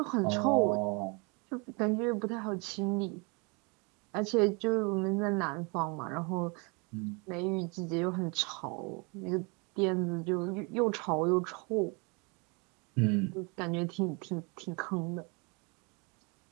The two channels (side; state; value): left; quieter; 31.4 dB